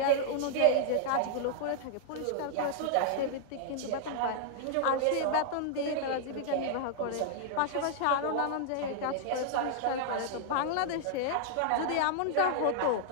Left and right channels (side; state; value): both; different; correlation -0.01